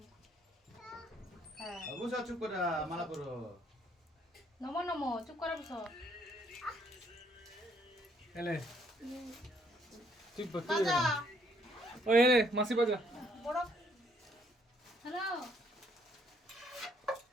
হ্যাঁ বুঝা চুপ করে মালা করো নমো নমো চুপ করে বসো এলে তুই বাজা ওই এলে মাসি বাজা বড় হ্যালো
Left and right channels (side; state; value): both; normal; correlation 0.67